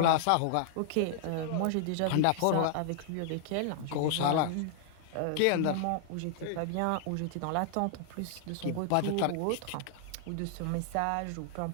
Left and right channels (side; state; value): both; different; correlation -0.01